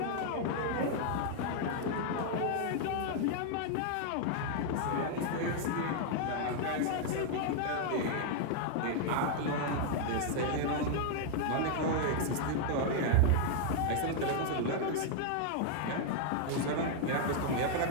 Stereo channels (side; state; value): both; different; correlation 0.00